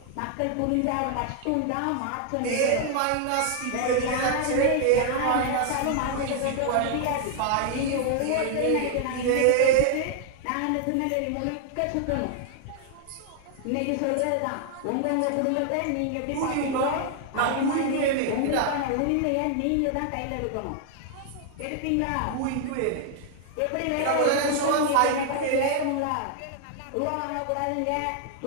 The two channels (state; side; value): different; both; correlation 0.00